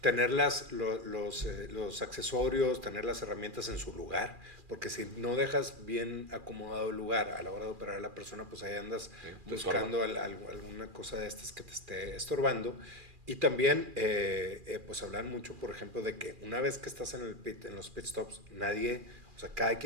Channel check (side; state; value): left; late; 2.4 ms